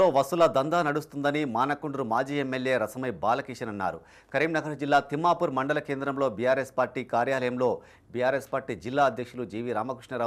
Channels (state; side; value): identical; both; correlation 1.00